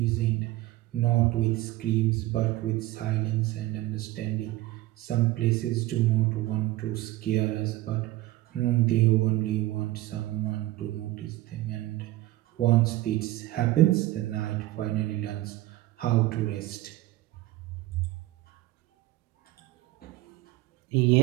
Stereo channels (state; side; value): quieter; left; 16.8 dB